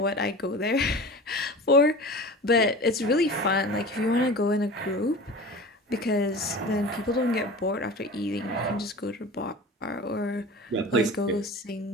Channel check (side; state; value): both; normal; correlation 0.36